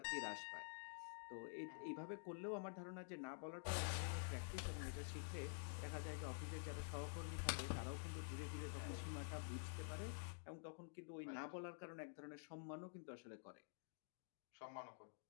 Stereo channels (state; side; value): silent; right; digital silence